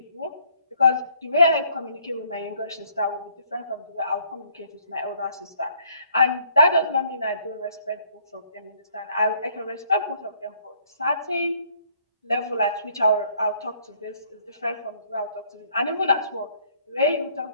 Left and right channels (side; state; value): both; inverted; correlation -0.64